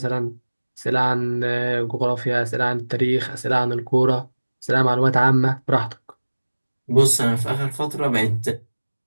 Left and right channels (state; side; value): inverted; both; correlation -1.00